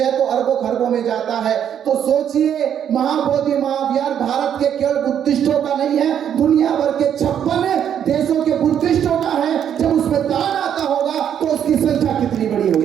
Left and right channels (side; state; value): left; quieter; 9.2 dB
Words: तो अरबों खरबों में जाता है। तो सोचिए, महाबोधि महाविहार भारत के केवल बुद्धिस्टों का नहीं है, दुनिया भर के 56 देशों के बुद्धिस्टों का है। जब उसमें दान आता होगा तो उसकी संख्या कितनी बड़ी